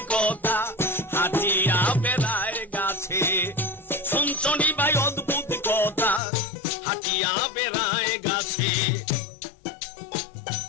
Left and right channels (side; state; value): right; drops out; at 6.2 s